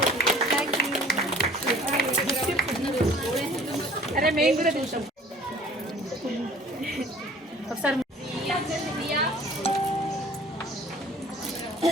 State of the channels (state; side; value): normal; both; correlation 0.50